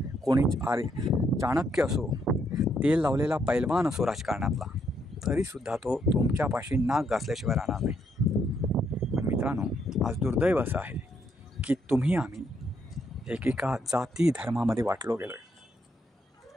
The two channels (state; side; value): normal; both; correlation 0.74